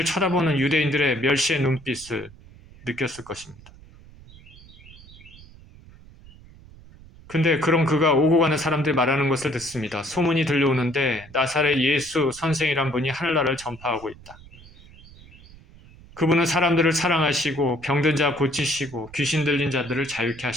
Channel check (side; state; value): right; noise; rumble, 21 dB below the sound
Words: 쳐다보는 유대인들의 멸시의 눈빛을 느꼈을 것입니다. 근데 그런 그가 오고 가는 사람들이 말하는 것을 듣습니다. 소문이 들려오는데 나사렛 예수 선생이란 분이 하늘나라를 전파하고 있다. 그분은 사람들을 사랑하시고 병든 자 고치시고 귀신 들린 자들을 자유케